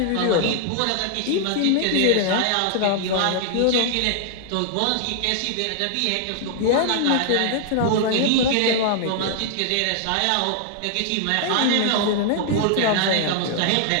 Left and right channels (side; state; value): both; different; correlation -0.01